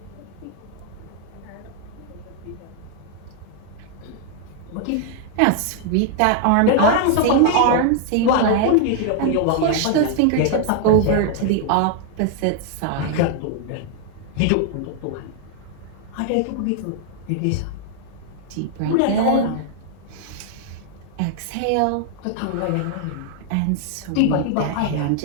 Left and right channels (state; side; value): different; both; correlation 0.00